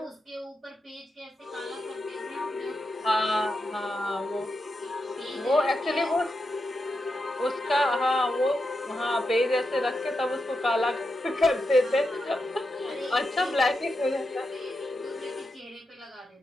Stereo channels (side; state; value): both; normal; correlation 0.87